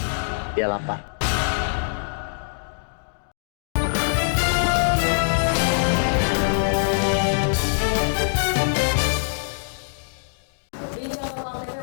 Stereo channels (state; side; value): silent; right; digital silence